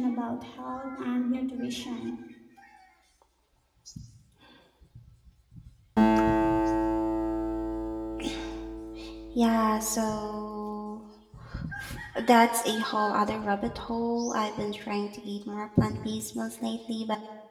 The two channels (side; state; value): both; identical; correlation 1.00